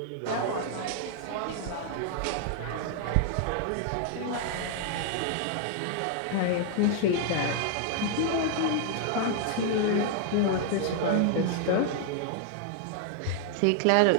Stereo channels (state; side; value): different; both; correlation 0.00